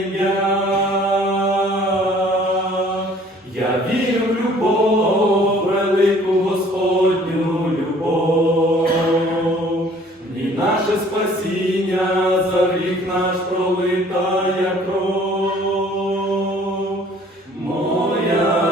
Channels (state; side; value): normal; both; correlation 0.55